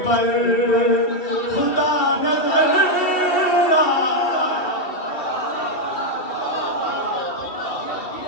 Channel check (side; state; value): right; late; 2.6 ms